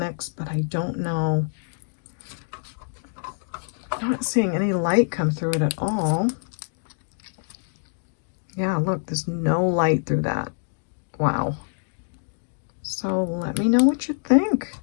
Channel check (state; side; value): silent; right; digital silence